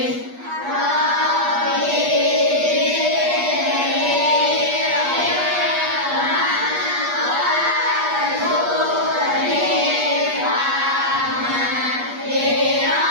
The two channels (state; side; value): late; left; 8.3 ms